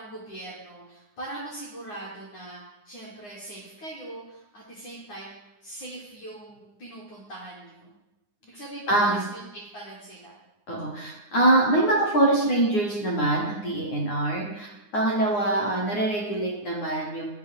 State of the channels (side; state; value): right; late; 9.7 ms